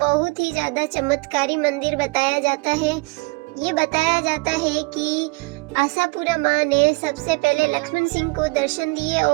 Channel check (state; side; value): quieter; left; 28.2 dB